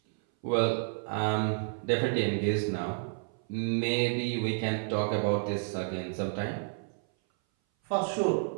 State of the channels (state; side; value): silent; left; 57 dB below the other